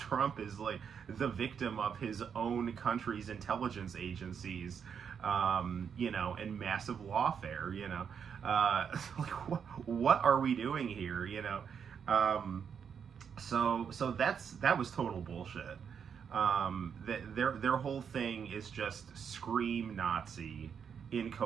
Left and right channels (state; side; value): quieter; left; 7.2 dB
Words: is like the victim of his own country's intelligence agencies, and massive lawfare. Like what are we doing here? So that was total bullshit. Their whole thing is just scream Nazi